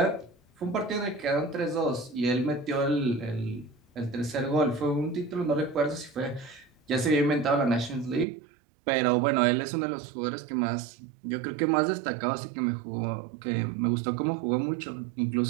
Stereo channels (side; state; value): left; drops out; at 8.2 s